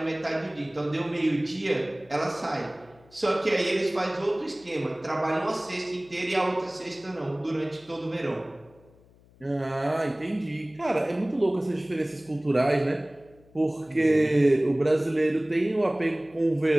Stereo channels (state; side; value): noise; left; hum, 28 dB below the sound